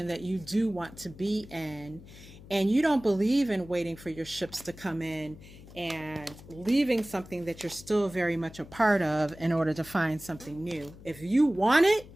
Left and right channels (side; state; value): left; noise; hum, 18 dB below the sound